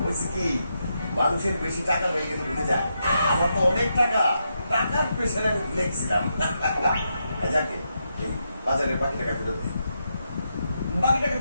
বলছি কি, মানুষের বেশি টাকা হয়ে গেলে ভুলে যায়। আমার তো অনেক টাকা, টাকার পেছনে আমি ভুলে গেছিলাম। যাকে এই বাজারের বাকি টাকা ফেরত দিই। বাকি টাকা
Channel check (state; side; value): inverted; both; correlation -0.83